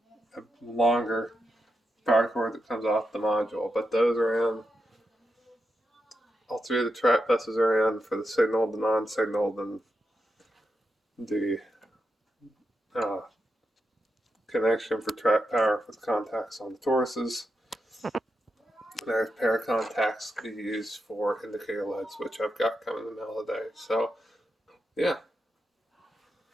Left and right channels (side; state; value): both; normal; correlation 0.86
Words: longer power cord that comes off the module, but those are in. All three of the track buses are in for the signaled, the non-signaled, and the connection for track power with contacts on the toruses. There's a pair of contacts to be used for indicator LEDs, which I've got coming in the mail today. So, yeah.